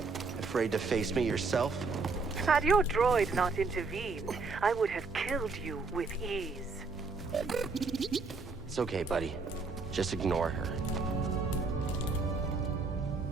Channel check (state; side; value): quieter; left; 4.2 dB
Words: Afraid to face me yourself? Had your droid not intervened, I would have killed you with ease. It's okay, buddy. Just ignore her.